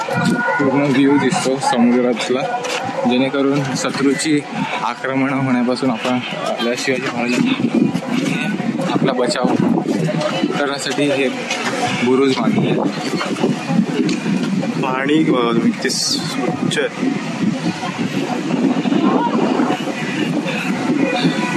व्ह्यू दिसतो समुद्रातला, जेणेकरून शत्रूची आक्रमण होण्यापासून आपण आपल्या शिवाजी महाराजांनी आपला बचाव करण्यासाठी हे बुरुज बांधले आहेत. पाणी किती स्वच्छ आहे.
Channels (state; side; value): identical; both; correlation 1.00